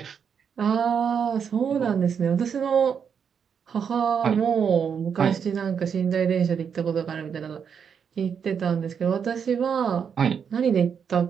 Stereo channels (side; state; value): left; quieter; 7.1 dB